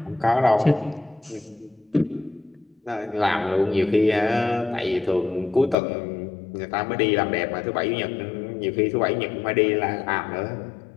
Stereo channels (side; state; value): right; drops out; at 5.8 s